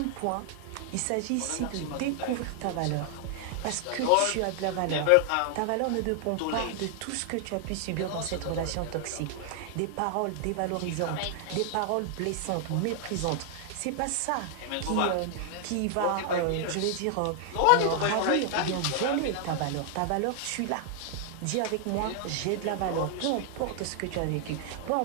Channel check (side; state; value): both; different; correlation 0.00